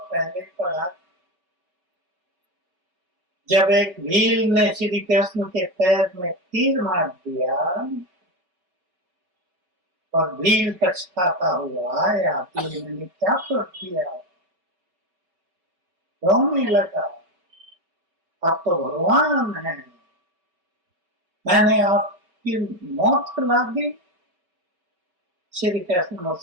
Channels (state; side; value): late; left; 5.6 ms